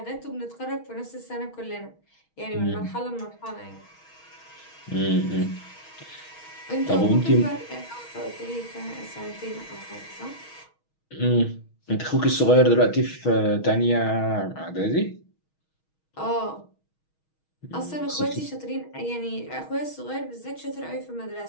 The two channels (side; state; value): right; late; 6.3 ms